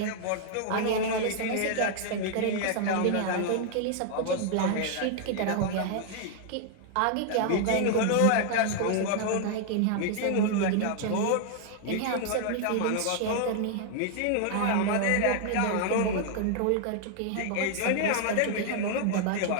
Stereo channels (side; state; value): both; different; correlation 0.00